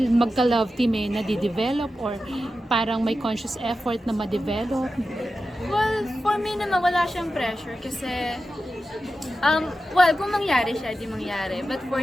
magka-love team nadidevelop or parang may conscious effort na ma-develop? Well, for me naman wala siyang pressure kasi kung mangyari siya, di mangyari. But for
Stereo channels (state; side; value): normal; both; correlation 0.92